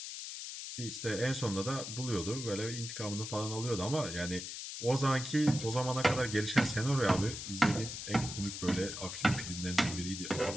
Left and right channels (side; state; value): left; noise; hiss, 7 dB below the sound